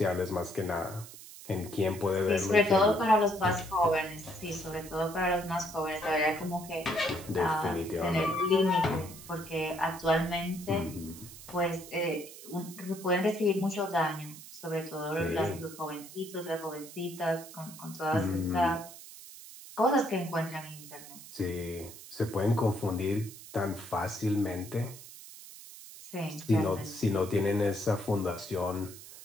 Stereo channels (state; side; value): noise; right; hiss, 16 dB below the sound